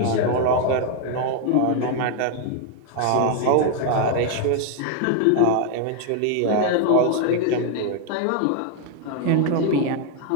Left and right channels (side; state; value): both; different; correlation 0.01